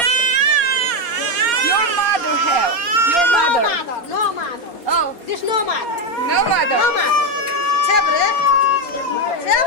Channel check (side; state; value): right; late; 4.3 ms